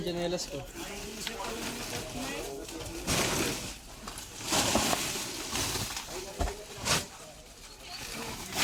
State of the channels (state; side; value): identical; both; correlation 1.00